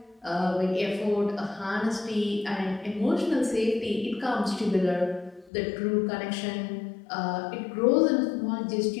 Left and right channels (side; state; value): right; drops out; at 5.5 s